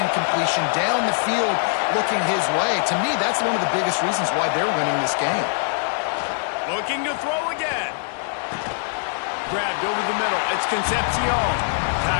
incompletion down the field looking his way. To me, that's one of the biggest reasons why they're winning this game. Looking to throw again. Grabbed over the middle. It's Concepcion.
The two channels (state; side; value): silent; right; digital silence